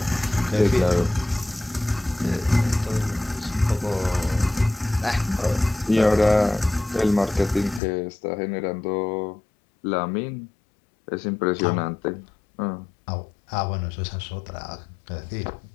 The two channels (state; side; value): drops out; right; at 7.8 s